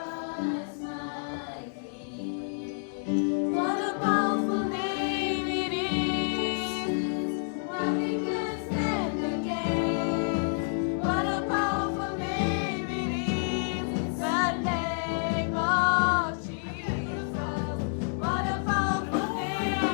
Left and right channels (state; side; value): silent; right; digital silence